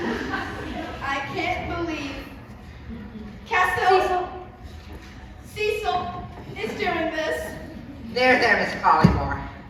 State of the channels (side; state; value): both; identical; correlation 1.00